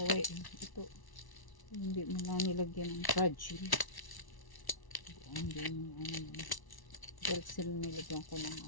Ito, hindi mo na nilagyan ng fragile. Hindi mo ano. Persil nilagyan ko ng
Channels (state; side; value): late; right; 1.1 ms